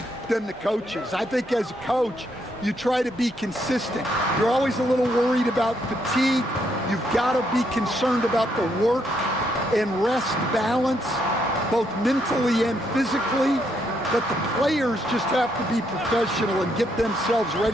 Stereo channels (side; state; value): both; normal; correlation 0.75